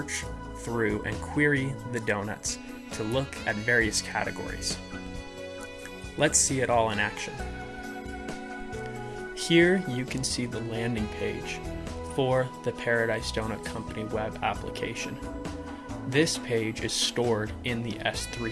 through and query the donuts to look at various categories. Let's see it all in action. Here you can see the landing page for the Paradise Donut Company web application. This page is stored in the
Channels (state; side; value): identical; both; correlation 1.00